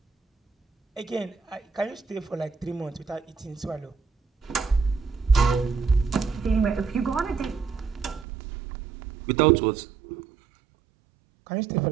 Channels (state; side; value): drops out; left; at 8.2 s